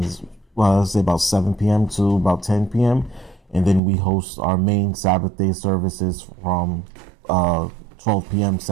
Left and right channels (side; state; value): left; drops out; at 3.8 s